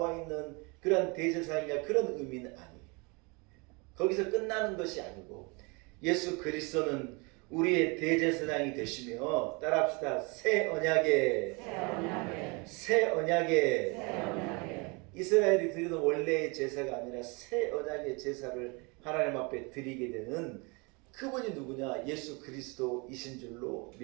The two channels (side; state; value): left; quieter; 29.4 dB